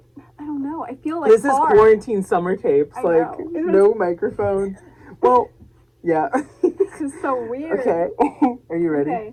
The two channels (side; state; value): both; identical; correlation 1.00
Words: I don't know. I feel like this is quarantine summer tapes. I like know. No microphone. Well, yeah. This is so weird. Okay. Are you ready?